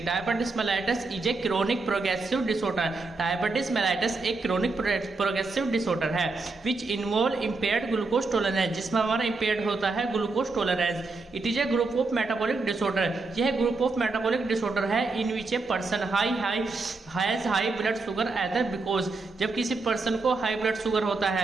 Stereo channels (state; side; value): quieter; left; 3.7 dB